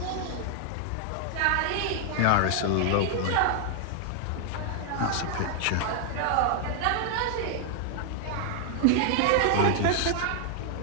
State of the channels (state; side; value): different; both; correlation 0.00